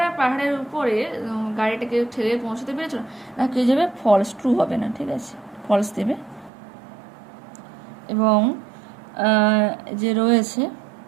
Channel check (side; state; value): left; drops out; at 6.5 s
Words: পাহাড়ের উপরে গাড়িটাকে ঠেলে পৌঁছতে পেরেছিল না, কে যাবে ফলস, ট্রু হবে না, ঠিক আছে, ফলস দেবে। এবং যে রয়েছে